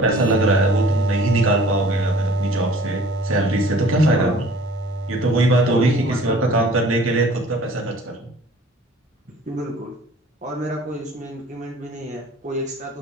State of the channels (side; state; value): both; normal; correlation 0.50